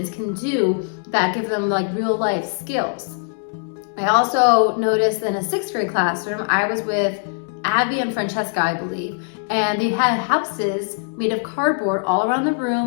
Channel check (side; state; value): right; silent; 65 dB below the other